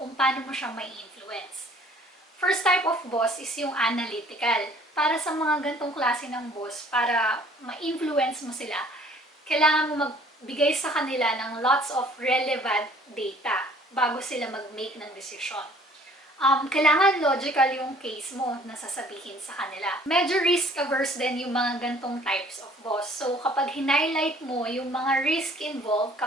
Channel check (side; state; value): both; normal; correlation 0.55